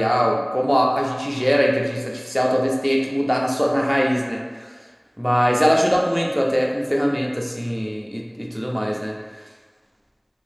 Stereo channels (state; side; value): identical; both; correlation 1.00